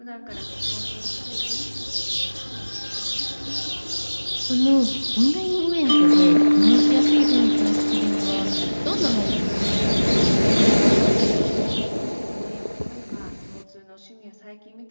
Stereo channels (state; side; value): inverted; both; correlation -1.00